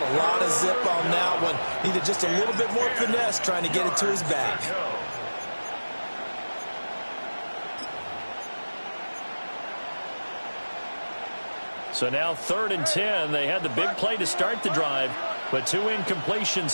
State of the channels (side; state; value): both; inverted; correlation -1.00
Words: a lot of zip on that one. Needed just a little bit more finesse trying to get it to his back. So now 3rd and 10. They had the big play to start the drive, but 2 incompletions